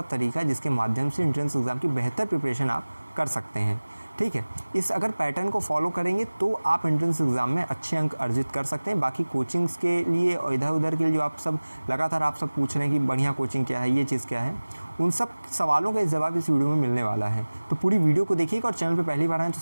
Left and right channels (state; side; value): inverted; both; correlation -1.00